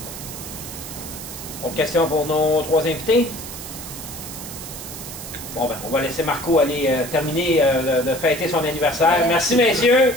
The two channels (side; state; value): right; noise; hiss, 11 dB below the sound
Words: Autre question pour nos 3 invités? Bon, ben, on va laisser Marco aller terminer de fêter son anniversaire. Merci, messieurs.